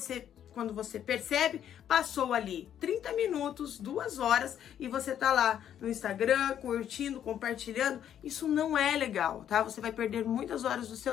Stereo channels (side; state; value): right; quieter; 10.0 dB